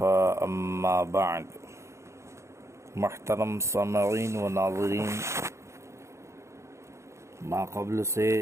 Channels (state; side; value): late; left; 0.14 ms